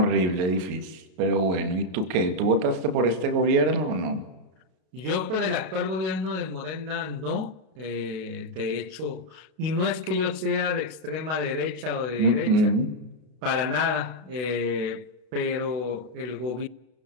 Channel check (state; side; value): late; left; 32 ms